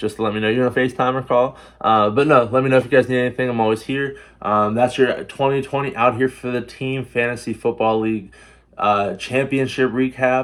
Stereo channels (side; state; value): both; identical; correlation 1.00